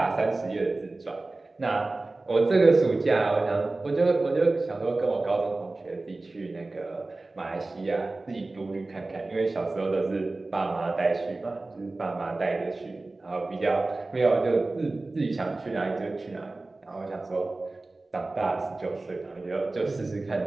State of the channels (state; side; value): quieter; left; 3.2 dB